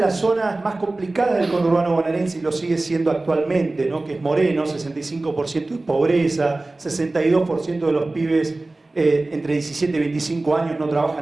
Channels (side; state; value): left; quieter; 3.0 dB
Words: las zonas más complicadas del conurbano bonaerense, y lo sigue siendo actualmente, ¿no? Que es Moreno, 65% de pobreza, 62% de los pibes entre 17 y 25 años no